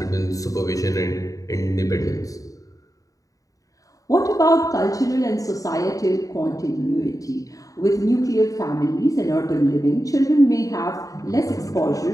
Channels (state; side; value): late; right; 0.16 ms